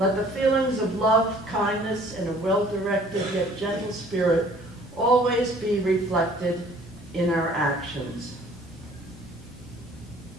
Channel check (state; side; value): normal; both; correlation 0.54